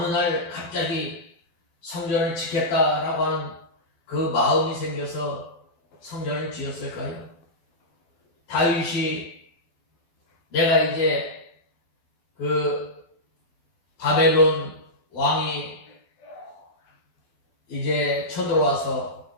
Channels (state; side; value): late; right; 12 ms